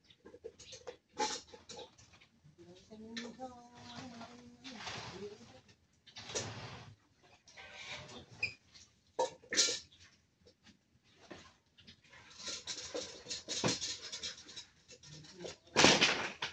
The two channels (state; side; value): identical; both; correlation 1.00